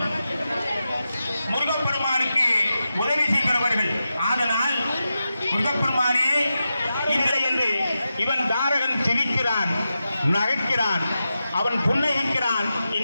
முருகப்பெருமானுக்கு உதவி செய்கிறவர்கள். ஆதலால் முருகப்பெருமானே இல்லை என்று இவன் தாரகன் சிரிக்கிறான், நகைக்கிறான், அவன் புன்னகிக்கிறான்.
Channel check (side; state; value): both; inverted; correlation -0.91